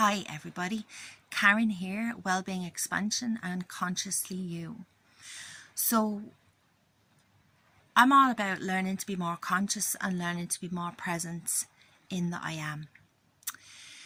Hi everybody, Karen here, Wellbeing Expansion and Consciously You. So I'm all about learning to be more conscious and learning to be more present in the I am.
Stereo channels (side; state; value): both; identical; correlation 1.00